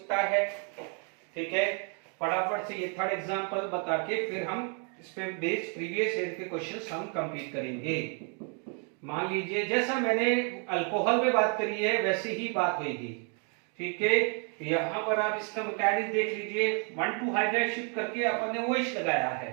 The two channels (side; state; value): left; quieter; 39.2 dB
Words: है। ठीक है, फटाफट से ये थर्ड एग्जांपल बता के फिर हम इस पे बेस्ड प्रीवियस ईयर के क्वेश्चंस हम कंप्लीट करेंगे। मान लीजिए जैसा मैंने अल्कोहल में बात करी है वैसी ही बात होगी। ठीक है, यहां पर आप इसका मैकेनिज्म देख लीजिए, 1,2 हाइड्राइड शिफ्ट करके अपन ने OH लगाया